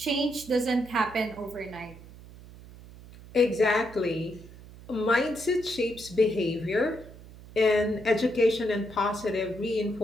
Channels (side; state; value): right; noise; hum, 18 dB below the sound